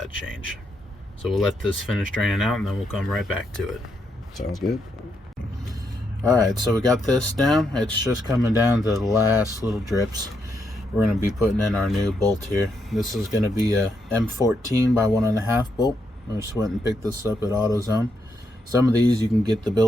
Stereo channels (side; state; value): both; normal; correlation 0.79